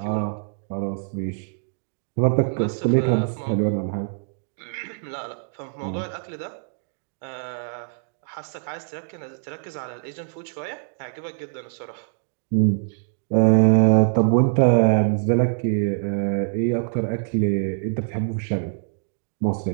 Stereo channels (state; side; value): silent; left; digital silence